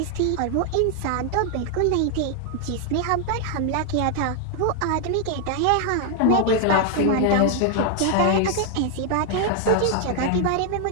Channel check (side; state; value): both; different; correlation 0.00